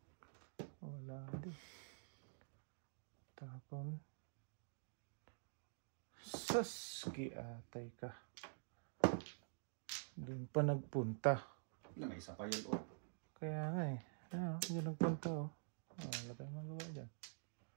Wala din. Tapon. Saski atay ka. Doon pa nagpunta. May isa pa yun, oh. Kaya nga eh. Yan ang punta oh. Wala tayong magawa dyan.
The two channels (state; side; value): silent; left; digital silence